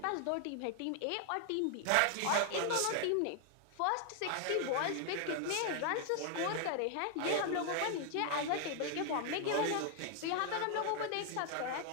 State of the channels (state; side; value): different; both; correlation 0.00